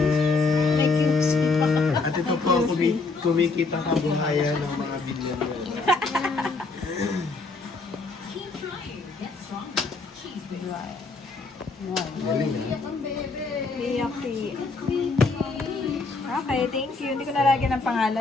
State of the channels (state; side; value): quieter; right; 3.8 dB